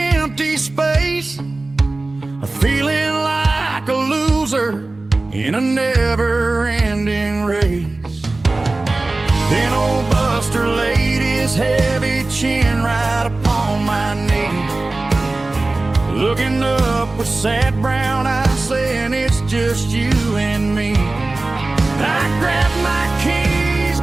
empty space, feeling like a loser in a never-ending race. Then old Buster laid his heavy chin right upon my knee, looking up with sad brown eyes, saying it's just you and me. I grabbed my keys,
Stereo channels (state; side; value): quieter; left; 3.1 dB